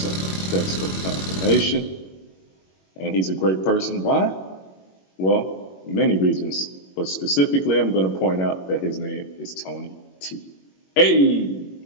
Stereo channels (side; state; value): right; late; 21 ms